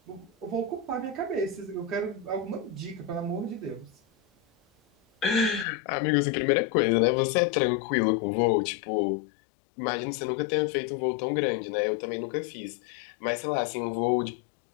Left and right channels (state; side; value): drops out; right; at 5.7 s